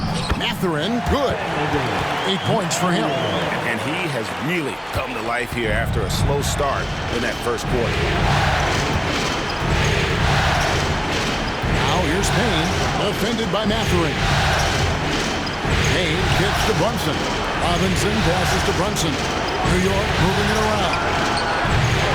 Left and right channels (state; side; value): identical; both; correlation 1.00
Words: Matherin, good. 8 points for him. And he has really come to life here after a slow start in that first quarter. Now here's Payne, defended by Matherin. Payne kicks to Brunson. Robinson passes to Brunson. New York moving it around.